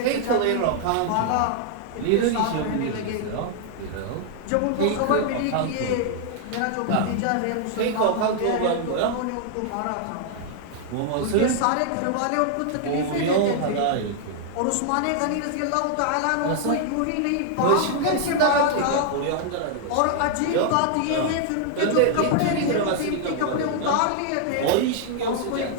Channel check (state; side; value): different; both; correlation -0.01